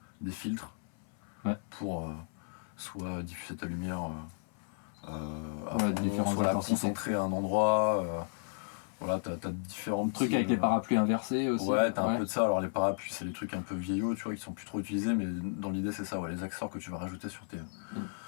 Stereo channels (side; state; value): right; silent; 55 dB below the other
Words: des filtres pour soit diffuser ta lumière à fond, différentes soit la intensités. concentrer à un endroit. Voilà, t'as différents Truc petits, avec les parapluies inversés aussi. Ouais, t'as un peu de ça. Alors les parapluies, c'est des trucs un peu vieillots, tu vois, qui sont plus trop utilisés, mais dans l'idée c'est ça, ouais, les accessoires que tu vas rajouter